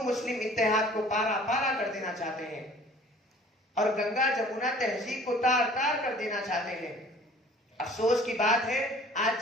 مسلم اتحاد کو پارا پارا کر دینا چاہتے ہیں اور گنگا جمنا تہذیب کو تار تار کر دینا چاہتے ہیں۔ افسوس کی بات ہے، آج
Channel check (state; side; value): normal; both; correlation 0.50